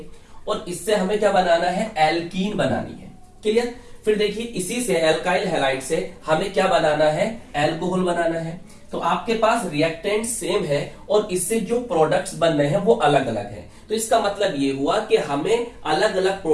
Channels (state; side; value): identical; both; correlation 1.00